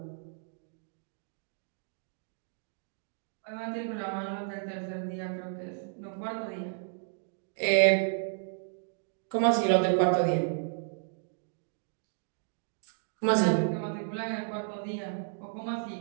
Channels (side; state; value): left; silent; digital silence